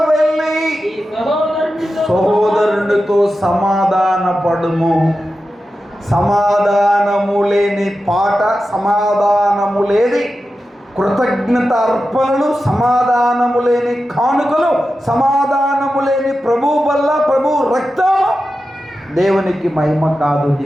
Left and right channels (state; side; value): normal; both; correlation 0.92